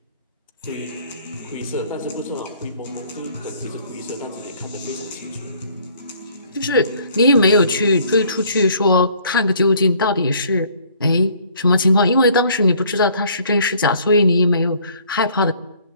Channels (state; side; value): inverted; both; correlation -0.58